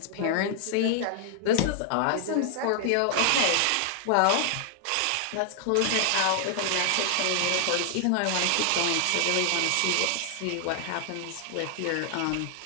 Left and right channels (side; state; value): both; different; correlation 0.00